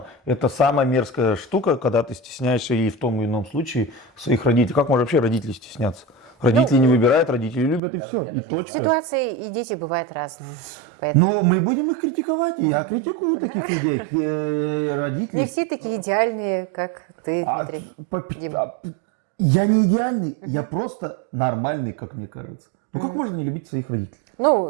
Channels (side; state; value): left; drops out; at 7.8 s